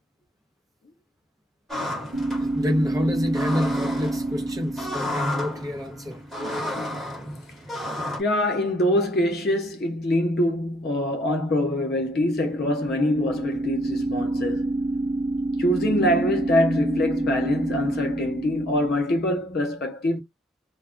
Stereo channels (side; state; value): both; normal; correlation 0.66